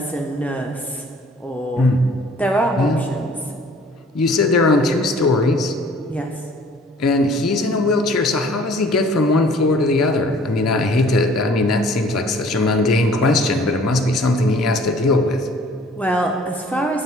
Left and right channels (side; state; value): both; normal; correlation 0.53